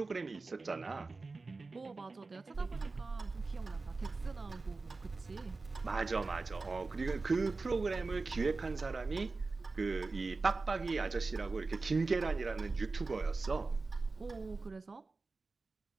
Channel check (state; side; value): quieter; left; 3.8 dB